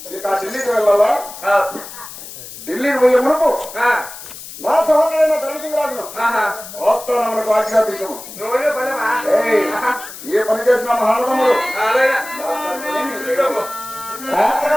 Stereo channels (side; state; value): left; noise; hiss, 13 dB below the sound